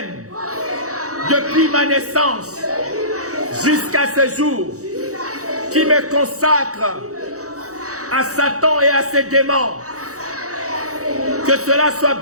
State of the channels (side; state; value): left; late; 0.65 ms